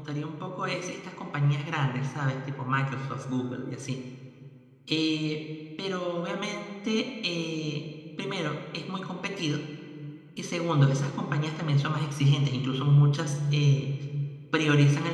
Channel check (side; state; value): both; identical; correlation 1.00